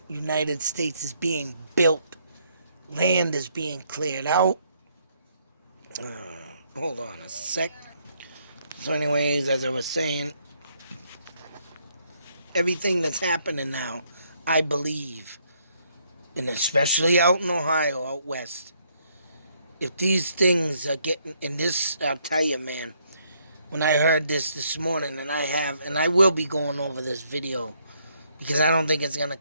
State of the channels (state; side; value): inverted; both; correlation -0.71